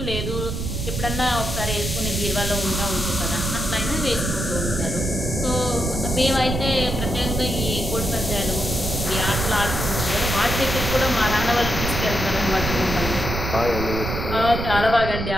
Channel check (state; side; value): noise; right; rumble, 3 dB below the sound